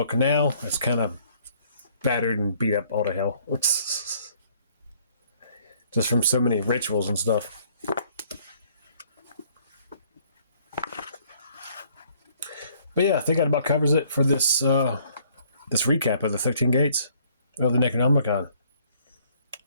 now. It's kind of battered and beat up all to hell. Just from so many rituals and stuff. But yeah, I think that about covers it for this this recap of the 13 gates of the Necronomicon.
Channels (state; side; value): inverted; both; correlation -0.62